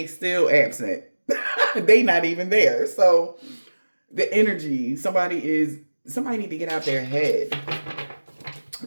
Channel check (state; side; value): inverted; both; correlation -1.00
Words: still absent. They not even there. So the energy, somebody need to get out their head.